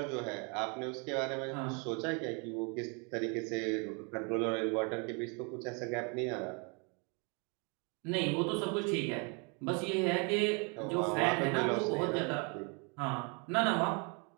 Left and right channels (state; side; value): quieter; left; 34.0 dB